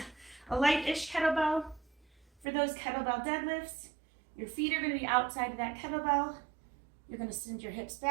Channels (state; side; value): drops out; left; at 2.5 s